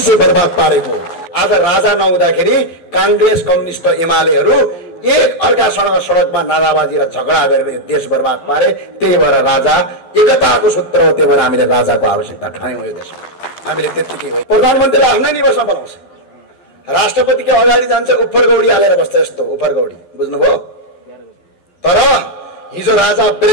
बर्बाद पारेको। आज राजा नहुँदाखेरि कांग्रेस, कम्युनिस्ट, एमालेहरू एक अर्कासँग सडकमा नाराबाजी र झगडा गरेर यो देश बर्बाद पारे। त्यही भएर राजा एकताको सूत्र हो, त्यही भएर हामीले राजाको आवश्यकता ठान्यौँ यो देशमा। हामीले त्यतिकै हो। प्रधानमन्त्रीलाई आफ्नै निवासमा बनाउँछ, राष्ट्रपतिको अगाडि जान्छ, उफरगौडी हालेर बस्छ, यस्तो उफरगौडी, बुझ्नुभयो? तर हिजो राजा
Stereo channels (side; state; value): right; late; 12 ms